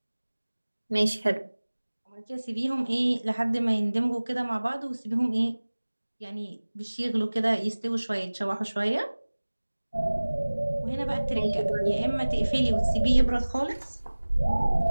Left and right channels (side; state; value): both; inverted; correlation -1.00